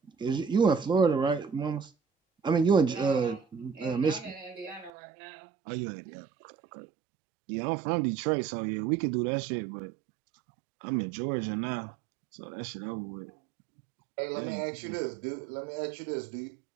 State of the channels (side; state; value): left; drops out; at 4.9 s